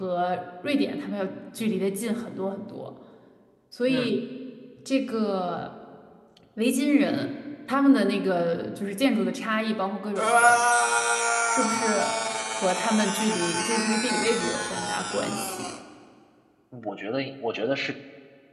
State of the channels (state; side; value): identical; both; correlation 1.00